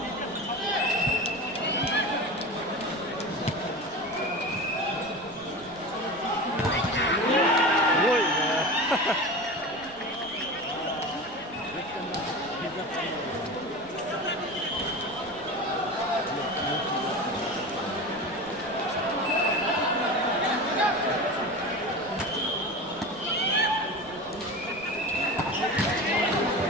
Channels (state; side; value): noise; right; rumble, 22 dB below the sound